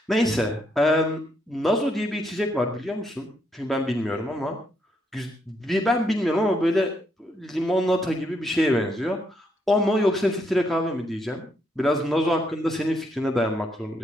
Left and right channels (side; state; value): both; normal; correlation 0.76